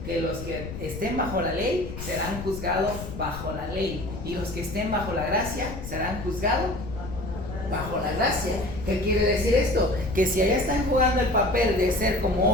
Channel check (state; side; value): noise; left; rumble, 9 dB below the sound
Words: que los que estén bajo la ley serán juzgados bajo la ley, y los que estén bajo la gracia serán juzgados bajo la gracia. ¿Qué quiere decir esto? Que si allá están jugando el papel de ser